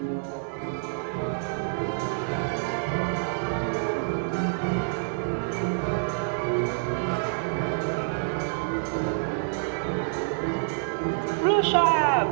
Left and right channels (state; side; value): silent; left; digital silence